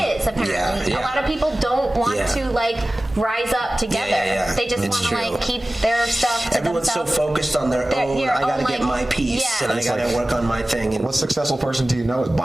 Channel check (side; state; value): both; normal; correlation 0.97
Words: apparently. Yeah. A lot of people don't want Yeah. to like rise up together. Yeah. They just It's want to true. like keep their stuff to everyone's so themselves. focused on their own. your I gotta own, get like- my piece, yeah. and I It's gotta like- work on my thing. And What successful person do you know is